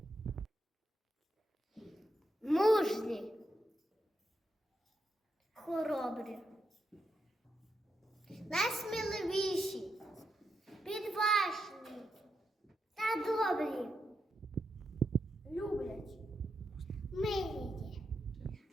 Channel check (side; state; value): both; normal; correlation 0.85